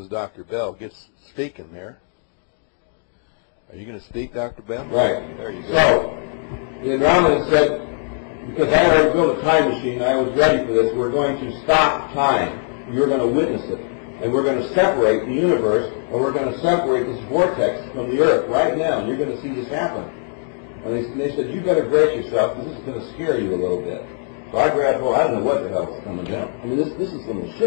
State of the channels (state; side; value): silent; right; 57 dB below the other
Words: Dr. Bell gets speaking there. Are you going to speak, Dr. Bell? Right. There you go. So, the Andromedan said, because I already built a time machine, I was ready for this, we're going to stop time. You're going to witness it. And we're going to separate the universe, and we're going to separate this vortex from the Earth right now, and you're going to see this happen. And they said, you better brace yourself, because this is going to scare you a little bit. So I grabbed hold, I don't know what the hell is coming down. I mean, this is some of the